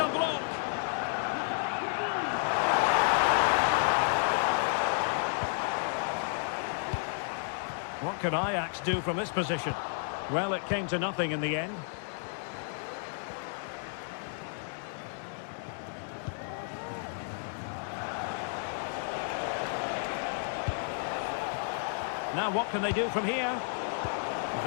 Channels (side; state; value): right; silent; digital silence